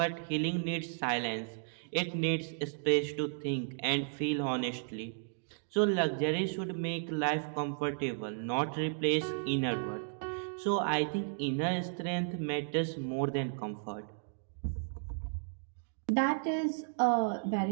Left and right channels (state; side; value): silent; left; digital silence